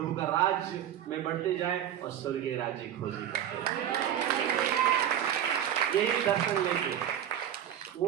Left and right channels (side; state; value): left; quieter; 10.5 dB